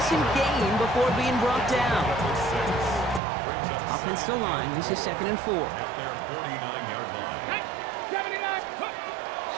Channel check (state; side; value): drops out; left; at 3.2 s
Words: gain before being brought down. Offense to line. This is 2nd and 4. At their 49-yard line. 79.